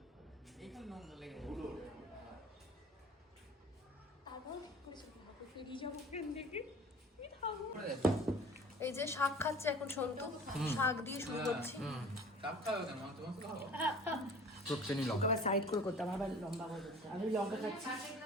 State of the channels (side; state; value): both; normal; correlation 0.45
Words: একটু নোংরা লেগে এই যে শাক খাচ্ছে এখন সন্তু, শাক দিয়ে শুরু করছি। কাপ খাবে কেন? তোমার তো খাবো। আবার সাইড করে করতাম, আবার লম্বা করে করতাম। আমি লঙ্কা খাচ্ছি।